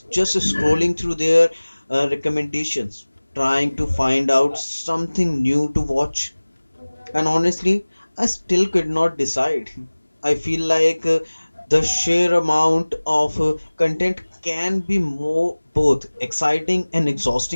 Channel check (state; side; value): inverted; both; correlation -1.00